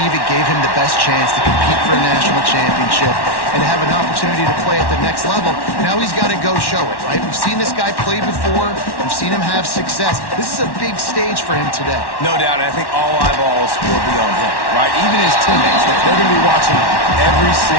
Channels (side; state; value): right; late; 1.1 ms